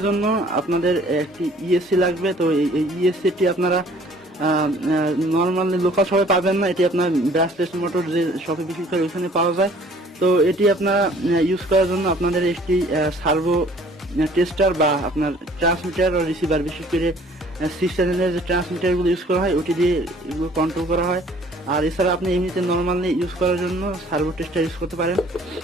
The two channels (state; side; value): normal; both; correlation 0.55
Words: জন্য আপনাদের একটি ইএসসি লাগবে। তো এই ইএসসিটি আপনারা নর্মালি লোকাল শপে পাবেন না, এটি আপনার ব্রাশলেস মোটর যে শপে বিক্রি করে ওইখানে পাওয়া যায়। তো এটি আপনারা ইউজ করার জন্য আপনাদের একটি সার্ভো টেস্টার বা আপনার ট্রান্সমিটার ও রিসিভার, বিশেষ করে 6 চ্যানেলের যে ট্রান্সমিটারগুলো ইউজ করা হয় ওটি দিয়ে এগুলো কন্ট্রোল করা হয়। আর এছাড়া আপনি এমনিতে নর্মালি ইউজ করার জন্য সার্ভো টেস্টার ইউজ করতে পারেন।